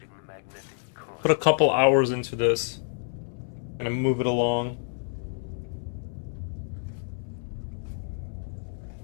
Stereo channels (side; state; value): right; silent; 59 dB below the other